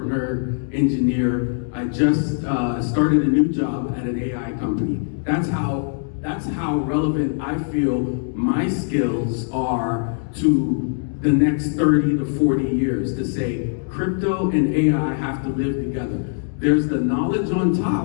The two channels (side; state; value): right; silent; 64 dB below the other